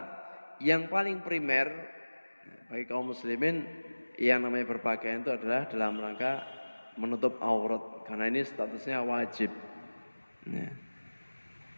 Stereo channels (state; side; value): inverted; both; correlation -1.00